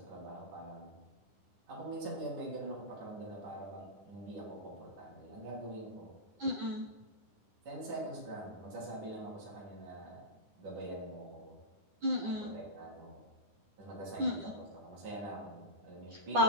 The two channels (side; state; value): left; late; 9.8 ms